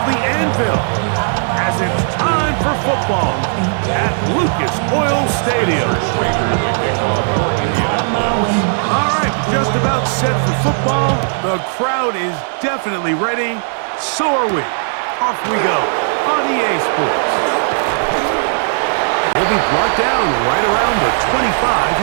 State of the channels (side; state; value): left; silent; digital silence